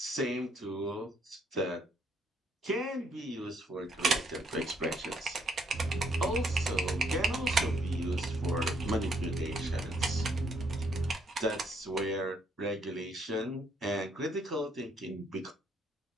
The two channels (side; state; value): both; normal; correlation 0.70